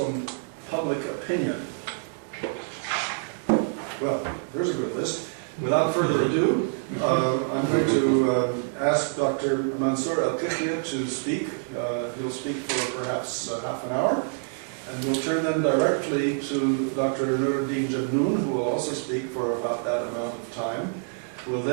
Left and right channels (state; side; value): silent; left; 61 dB below the other